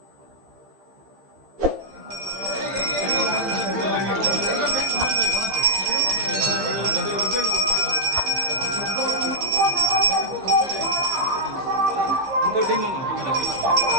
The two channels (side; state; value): left; late; 15 ms